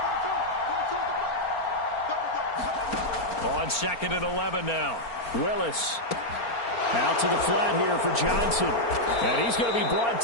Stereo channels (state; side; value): late; right; 4.3 ms